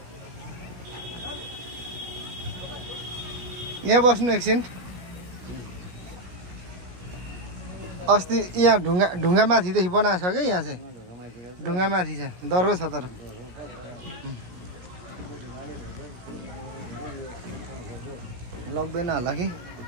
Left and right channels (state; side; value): late; left; 17 ms